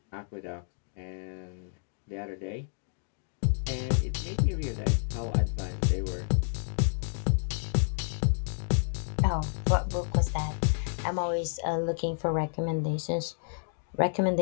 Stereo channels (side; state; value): right; silent; digital silence